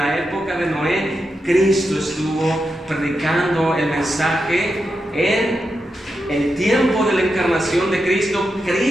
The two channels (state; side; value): normal; both; correlation 0.87